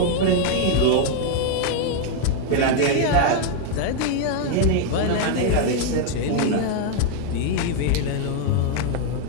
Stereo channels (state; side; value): different; both; correlation 0.00